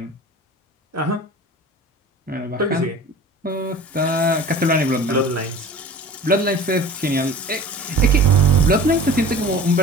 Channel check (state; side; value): normal; both; correlation 0.41